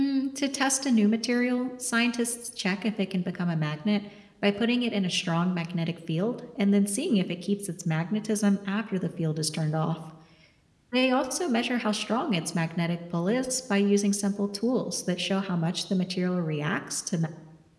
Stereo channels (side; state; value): both; identical; correlation 1.00